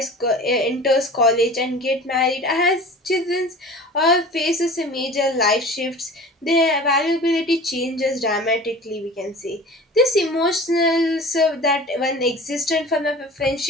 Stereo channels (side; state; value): both; normal; correlation 0.39